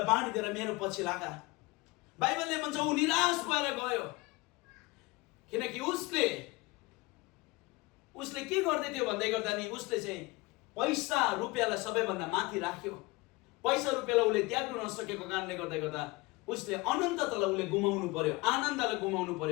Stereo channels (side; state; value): right; quieter; 23.2 dB